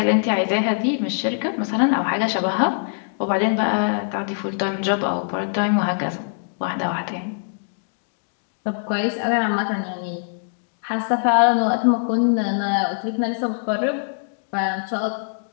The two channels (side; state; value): right; silent; digital silence